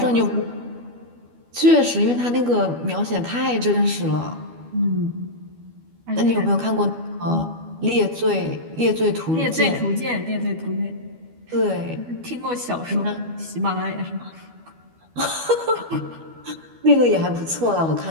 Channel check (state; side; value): late; left; 12 ms